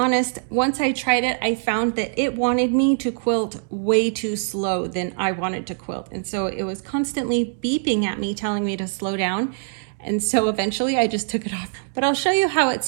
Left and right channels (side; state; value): left; silent; digital silence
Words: once I tried it, I found that it wanted me to quilt way too slow than I wanted to quilt. And so it was constantly beeping at me, telling me to slow down. And so eventually I just took it off. But I'll show you how